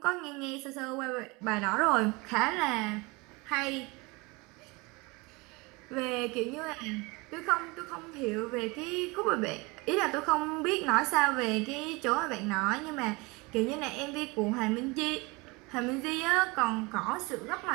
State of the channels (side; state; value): left; quieter; 25.8 dB